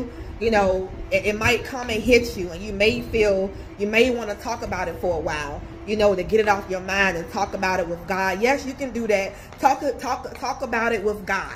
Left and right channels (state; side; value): identical; both; correlation 1.00